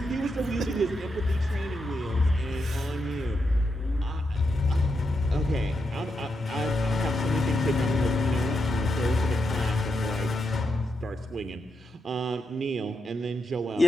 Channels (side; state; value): both; normal; correlation 0.84